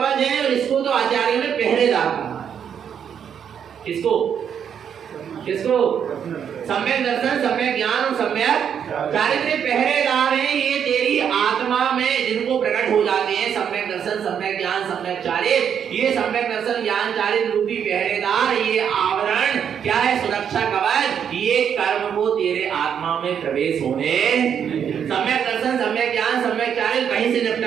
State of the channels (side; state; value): left; quieter; 8.2 dB